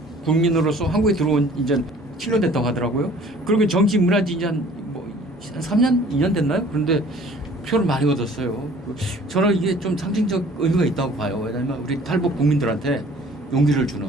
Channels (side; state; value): both; normal; correlation 0.52